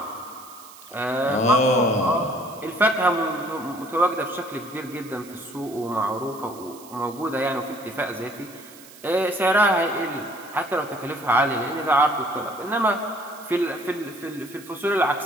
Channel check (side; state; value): right; noise; hiss, 20 dB below the sound